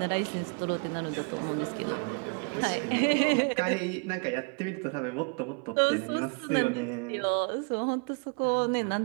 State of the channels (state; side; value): quieter; left; 36.3 dB